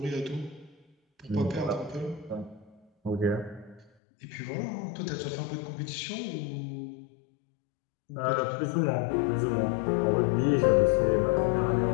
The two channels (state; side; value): drops out; right; at 3.9 s